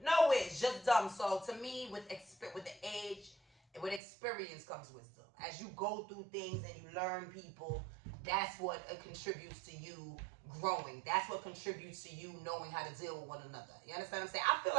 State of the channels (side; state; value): left; drops out; at 4.0 s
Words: No whiz, just dumb. So to me, with the age, with experience comes wisdom. As you go through things and you learn people, that's what contributes to you growing. That's what contributes to you knowing how to deal with one another. You understand what I'm saying? I feel